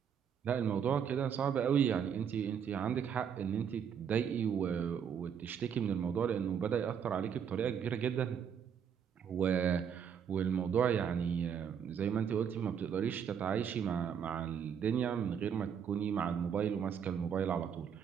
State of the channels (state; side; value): quieter; left; 7.8 dB